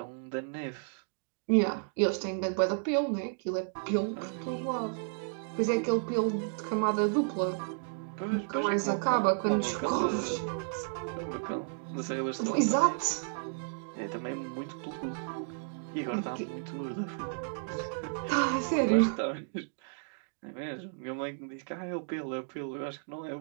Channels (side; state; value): left; silent; digital silence